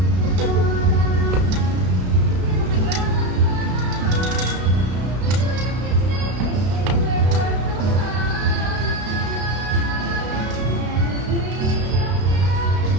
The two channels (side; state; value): left; late; 32 ms